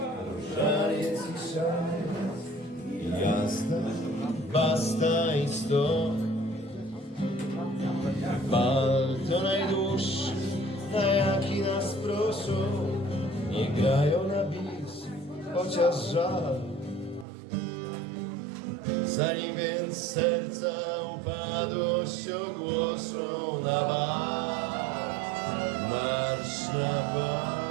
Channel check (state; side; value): drops out; left; at 17.2 s